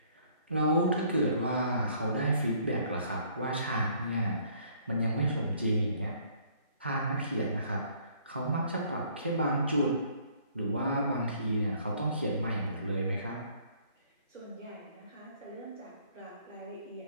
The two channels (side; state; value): both; inverted; correlation -0.61